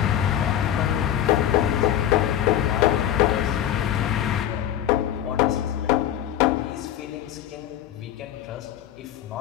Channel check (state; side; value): quieter; right; 11.2 dB